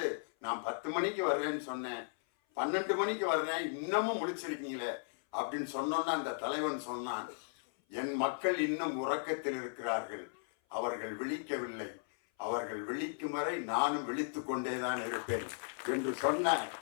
நான் 10 மணிக்கு வர்றேன்னு சொன்னேன், 12 மணிக்கு வர்றேன், இன்னமும் முழிச்சிருக்கீங்களே அப்படின்னு சொன்னோன்னா அந்த தலைவன் சொன்னான், என் மக்கள் இன்னும் உறக்கத்தில் இருக்கிறார்கள், அவர்கள் விழிக்கவில்லை, அவர்கள் விழிக்கும் வரை நானும் விழித்து கொண்டேதான் இருப்பேன் என்று சொன்ன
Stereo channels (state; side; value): silent; right; 54 dB below the other